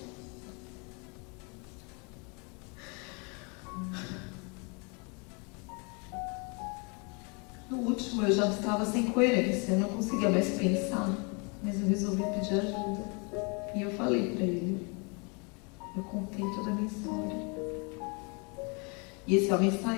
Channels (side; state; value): right; quieter; 32.8 dB